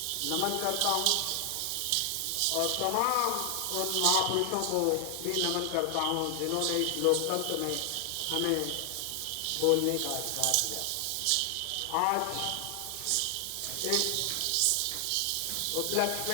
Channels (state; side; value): different; both; correlation 0.00